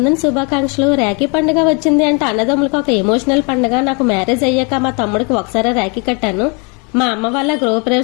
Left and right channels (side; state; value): right; quieter; 33.3 dB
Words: శుభాకాంక్షలు. రాఖీ పండుగ వచ్చింది అంటే అన్నదమ్ములకు ఒక ఎమోషనల్ పండుగ. నాకు మ్యారేజ్ అయ్యాక మా తమ్ముడికి ఒకసారి రాఖీ కట్టాను. మా అమ్మ వాళ్ళ